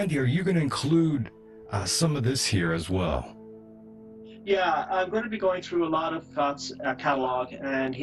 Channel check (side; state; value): both; identical; correlation 1.00